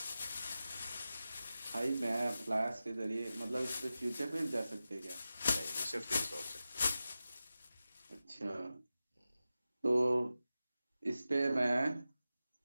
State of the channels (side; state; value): both; inverted; correlation -0.93